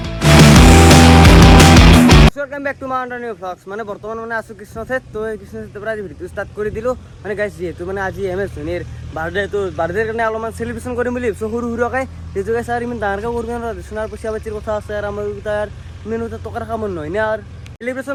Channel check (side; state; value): both; identical; correlation 1.00